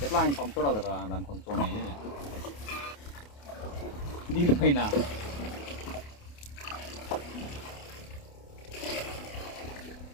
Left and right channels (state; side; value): late; right; 28 ms